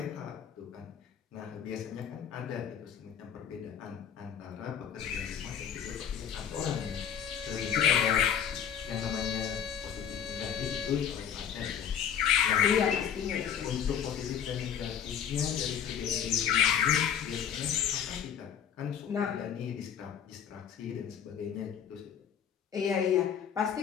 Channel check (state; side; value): quieter; right; 8.4 dB